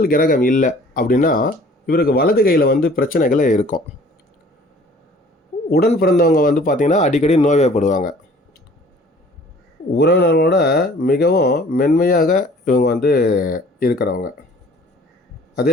கிரகம் இல்லை அப்படின்னா இவருக்கு வலது கையில் பிரச்சனைகளே இருக்கும். உடன் பிறந்தவங்க பார்த்திங்கன்னா அடிக்கடி நோய்வாய்ப்படுவாங்க. உறவினர்களோட மிகவும் மென்மையாக இவங்க இருக்கிறவங்க.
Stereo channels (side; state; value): both; normal; correlation 0.52